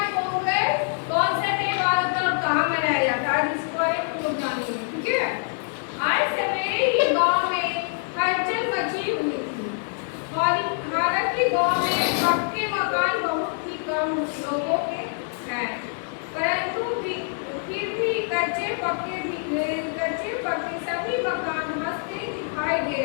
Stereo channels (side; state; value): right; silent; 62 dB below the other